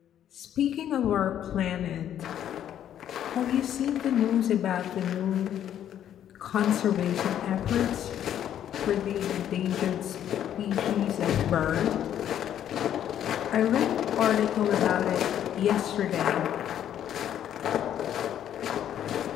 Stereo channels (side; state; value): right; quieter; 10.5 dB